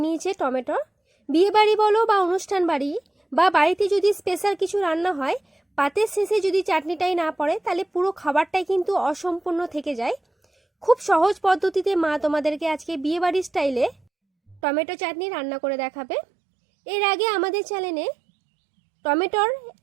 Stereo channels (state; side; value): drops out; left; at 14.6 s